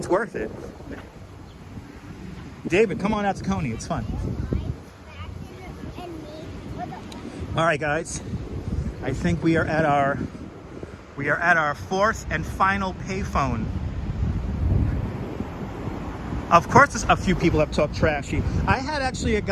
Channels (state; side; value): identical; both; correlation 1.00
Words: worth it. David, come on out to Coney. It's fun. All right, guys. I think we are at our fourth and final payphone. Of course, a few people have talked trashy. I had actually a